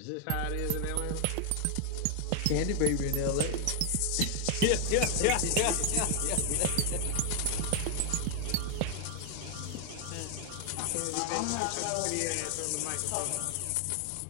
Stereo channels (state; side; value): different; both; correlation 0.00